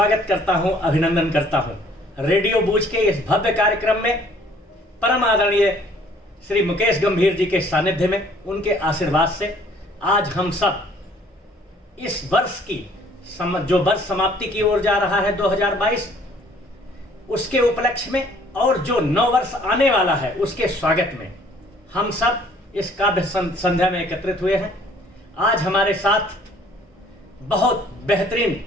करता हूं, अभिनंदन करता हूं। रेडियो बूझ के इस भव्य कार्यक्रम में परम आदरणीय श्री मुकेश गंभीर जी के सानिध्य में, उनके आशीर्वाद से आज हम सब इस वर्ष की जो वर्ष समाप्ति की ओर जा रहा है 2022, उसके उपलक्ष्य में और जो नव वर्ष आने वाला है उसके स्वागत में हम सब इस काव्य संध्या में एकत्रित हुए हैं। आज हमारे साथ बहुत बेहतरीन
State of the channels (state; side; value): normal; both; correlation 0.58